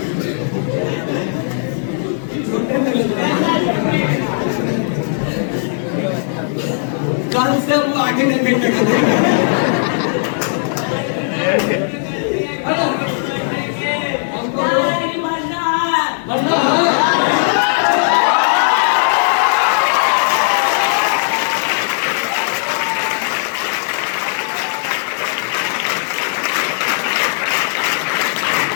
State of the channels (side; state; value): right; silent; digital silence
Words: कल से वो आगे नहीं बैठेगा।